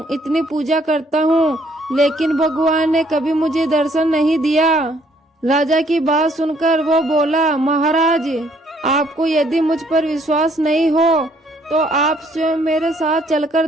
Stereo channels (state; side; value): normal; both; correlation 0.65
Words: इतनी पूजा करता हूँ, लेकिन भगवान ने कभी मुझे दर्शन नहीं दिया। राजा की बात सुनकर वो बोला, महाराज, आपको यदि मुझ पर विश्वास नहीं हो तो आप स्वयं मेरे साथ चलकर